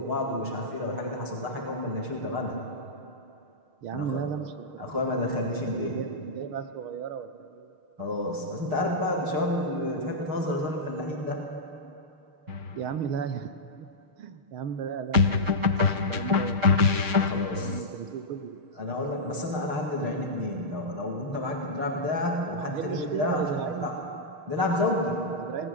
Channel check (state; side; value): late; left; 6.5 ms